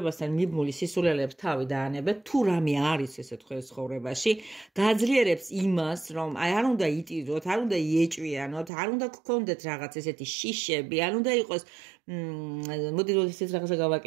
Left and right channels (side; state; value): left; drops out; at 8.7 s